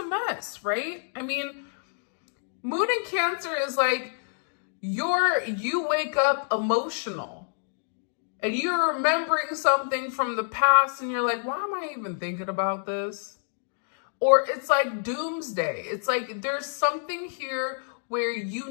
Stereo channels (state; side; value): silent; right; digital silence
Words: mess, right? I mean, moon in Cancer is like you wake up emotional and you're remembering something from the past and you're like, why am I even thinking about this? Or it's like doomsday. It's like there's something here where you